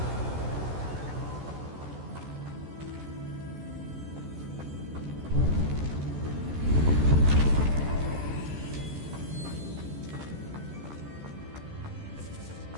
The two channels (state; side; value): late; left; 14 ms